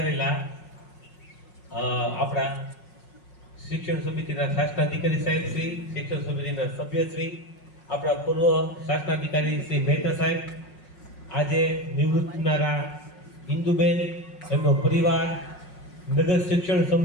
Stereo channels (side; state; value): right; late; 5.5 ms